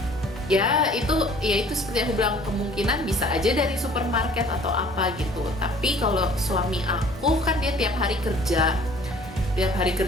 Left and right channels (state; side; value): normal; both; correlation 0.53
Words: Itu seperti aku bilang, kemungkinan bisa aja dari supermarket atau apa gitu. Tapi kalau suami aku kan dia tiap hari kerja